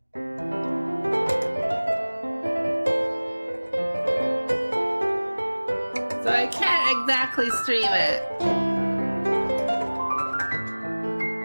I can't exactly stream it.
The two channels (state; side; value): inverted; both; correlation -1.00